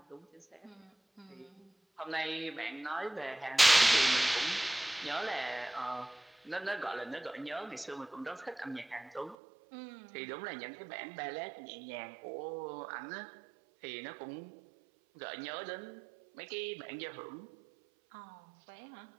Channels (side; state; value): left; drops out; at 9.3 s